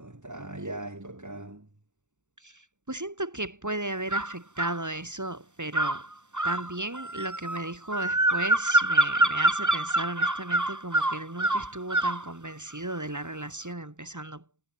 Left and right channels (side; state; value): left; late; 0.84 ms